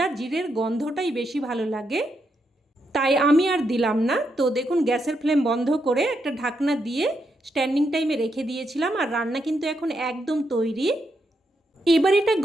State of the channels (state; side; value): normal; both; correlation 0.81